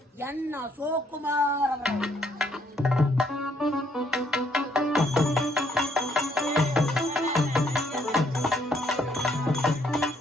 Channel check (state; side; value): normal; both; correlation 0.68